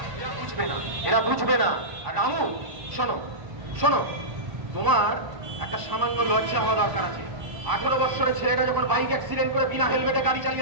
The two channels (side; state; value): left; late; 1.1 ms